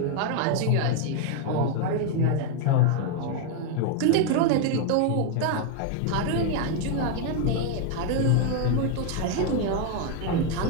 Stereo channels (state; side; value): different; both; correlation 0.01